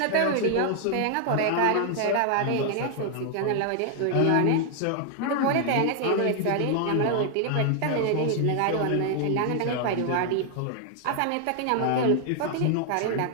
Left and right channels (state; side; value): different; both; correlation 0.00